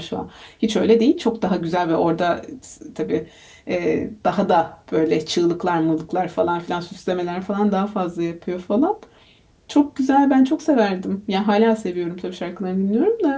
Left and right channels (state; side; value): identical; both; correlation 1.00